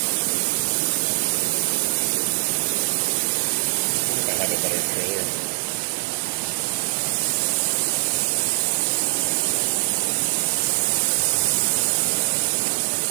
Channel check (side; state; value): left; silent; digital silence